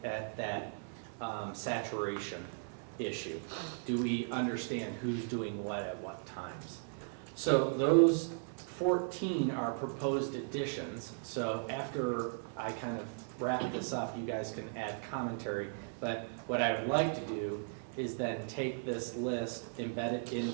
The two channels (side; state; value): left; silent; 53 dB below the other